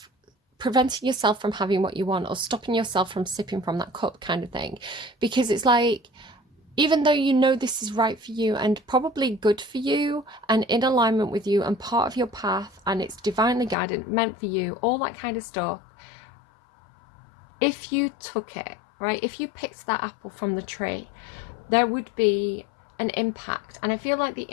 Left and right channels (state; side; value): drops out; right; at 13.8 s